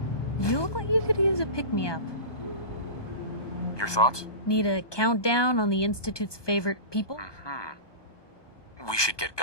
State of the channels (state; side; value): late; right; 1.2 ms